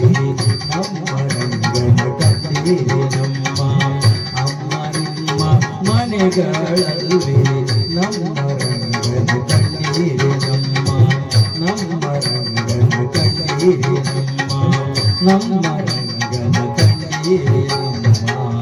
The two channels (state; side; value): identical; both; correlation 1.00